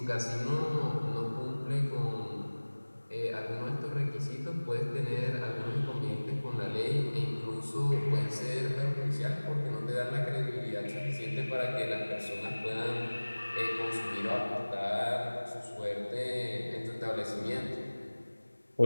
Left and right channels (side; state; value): both; inverted; correlation -1.00